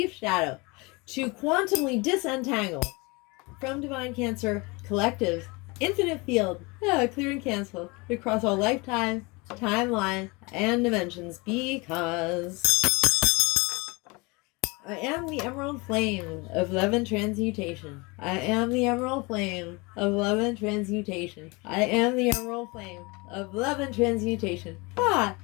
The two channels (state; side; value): quieter; right; 26.6 dB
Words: shadow to quantumly disentangle from Divine Cancer Collective's infinite field, clear and cancel across all lifetime, timeline, and dimensions, because I am the emerald flame of love and transmutation. I am the emerald flame of love and transmutation. I am the emerald flame of love and transmutation.